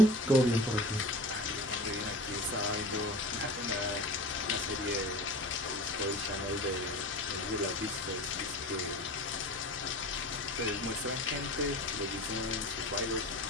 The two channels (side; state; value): both; normal; correlation 0.36